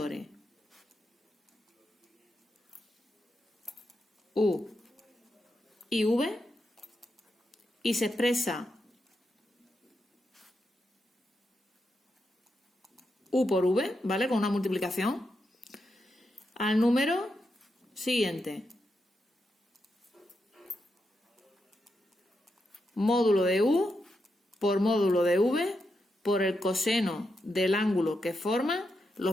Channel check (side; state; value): both; normal; correlation 0.85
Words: U y V y se expresa U por V, ¿vale? Con una multiplicación al número siguiente. Módulo de U por módulo de V por el coseno del ángulo que forman los